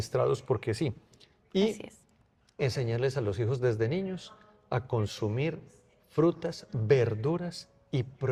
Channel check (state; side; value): identical; both; correlation 1.00